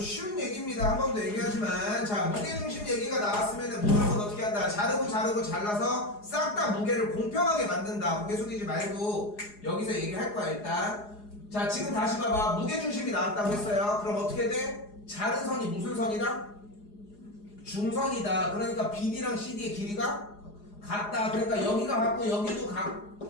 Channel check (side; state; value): right; late; 4.8 ms